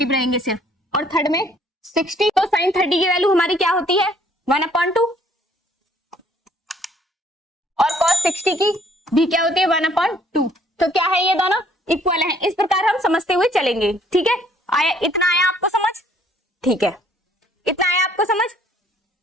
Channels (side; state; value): both; normal; correlation 0.62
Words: रहेंगे सिर्फ, और थर्ड में 60. तो साइन 30 की वैल्यू हमारी क्या होती है? 1/2 और कॉस 60 की भी क्या होती है? 1/2. तो क्या है? ये दोनों इक्वल हैं. इस प्रकार हम समझते हुए चलेंगे. ठीक है, आया? इतना आया आपको समझ? ठीक है, इतना आया आपको समझ?